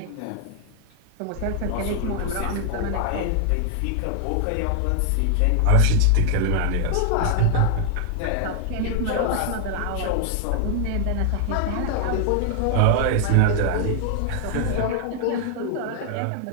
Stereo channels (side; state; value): both; different; correlation 0.00